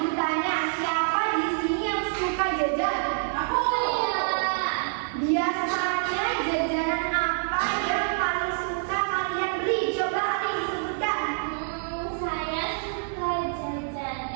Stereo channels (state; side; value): silent; left; digital silence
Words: tanya, siapa di sini yang suka jajan? Aku ya. Biasanya jajanan apa yang paling suka kalian beli? Coba ada disebutkan. Saya suka jajan